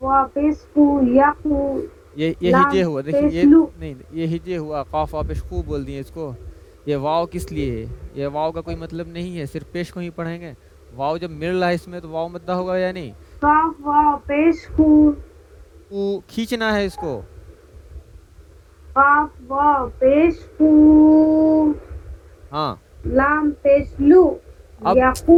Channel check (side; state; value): both; identical; correlation 1.00